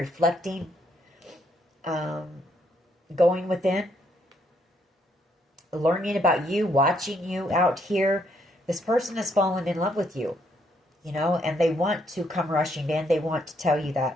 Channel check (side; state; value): both; normal; correlation 0.72